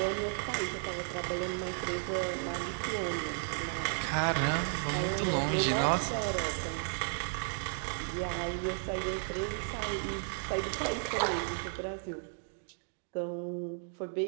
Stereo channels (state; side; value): silent; left; 55 dB below the other